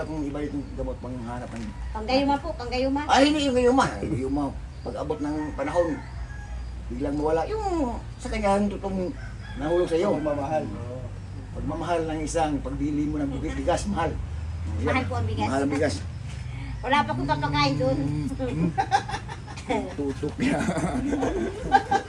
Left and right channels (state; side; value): identical; both; correlation 1.00